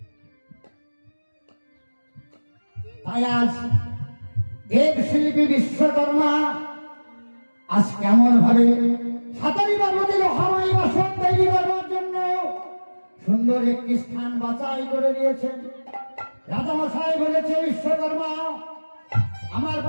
তাই আজ দেবশিল্পী বিশ্বকর্মা আজ কেমন ভাবে সাতারি পর্বতে লোহাময় বাসন তৈরি করবার জন্য সুন্দর একটি স্থান বাছাই করে দিয়েছেন। রাজামশাই বলেছে, বিশ্বকর্মা আমার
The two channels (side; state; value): both; inverted; correlation -1.00